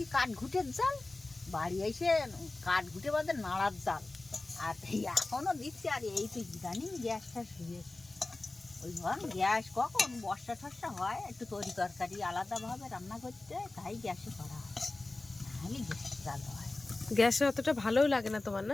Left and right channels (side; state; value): right; quieter; 3.1 dB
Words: কাঠ ঘুটের জাল বাড়ি এসে কাঠ ঘুটে বাদে নাড়ার জাল আর এখনো দিচ্ছি আর এই তো ইদানিং গ্যাসটা শুয়ে ওই ধর গ্যাস কখন বর্ষা টর্ষা হয় একটু তরি তরকারি আলাদাভাবে রান্না করতে তাই গ্যাসে করা হয় নাহলে গ্যাস জাল হয় গ্যাসে অতটা ভালোও লাগে না তোমার